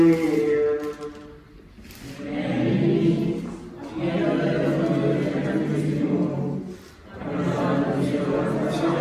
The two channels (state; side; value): identical; both; correlation 1.00